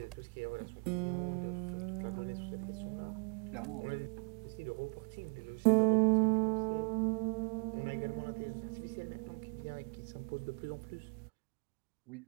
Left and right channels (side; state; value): left; quieter; 39.5 dB